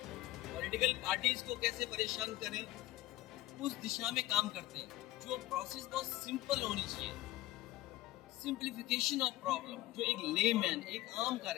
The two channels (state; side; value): quieter; right; 16.4 dB